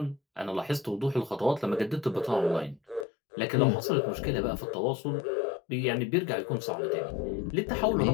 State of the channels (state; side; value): drops out; right; at 3.1 s